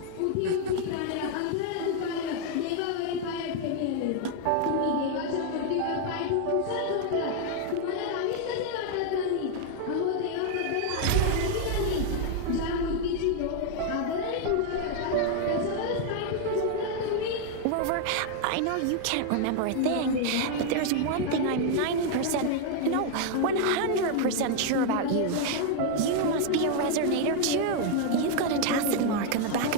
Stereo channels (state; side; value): different; both; correlation 0.00